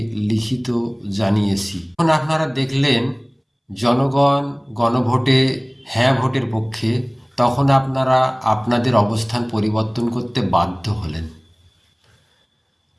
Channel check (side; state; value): both; identical; correlation 1.00